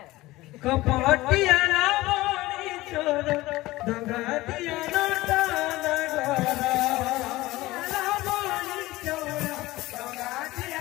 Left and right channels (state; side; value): quieter; right; 18.6 dB